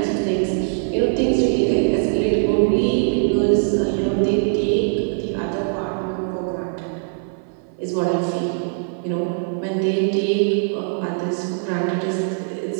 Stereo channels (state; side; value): silent; left; 59 dB below the other